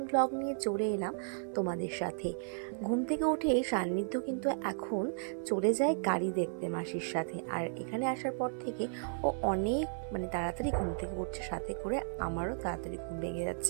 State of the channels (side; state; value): left; silent; 55 dB below the other